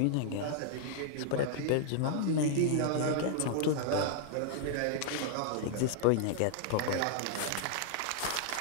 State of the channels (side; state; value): both; different; correlation -0.01